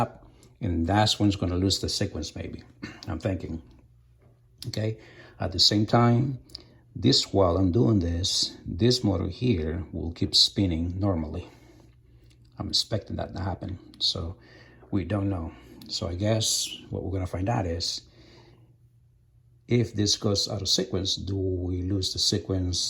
and that's when it's going to lose the sequence. Maybe I'm thinking. Okay. At the same time, while I'm doing this motor here will keep spinning normally. I'm expecting that to happen. So we don't know. So I guess what we're going to find out is if this goes out of sequence, do we lose the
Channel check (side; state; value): both; identical; correlation 1.00